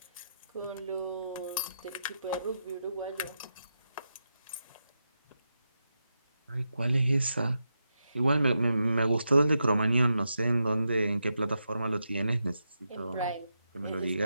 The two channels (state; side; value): inverted; both; correlation -0.86